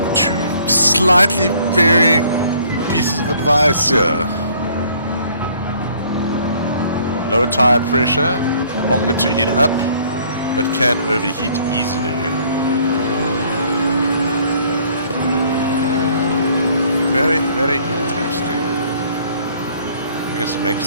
2 slightly varying pieces of advice here. Lower tire pressure, longer to heat up, but can overheat easily. Very, very interesting. I guess it makes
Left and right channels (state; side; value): inverted; both; correlation -0.60